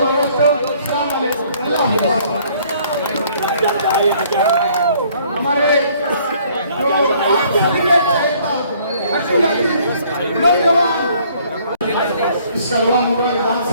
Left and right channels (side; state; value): both; inverted; correlation -0.60